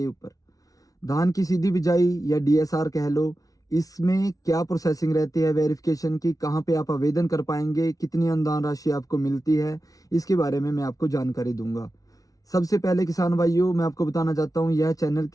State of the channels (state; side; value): late; right; 0.18 ms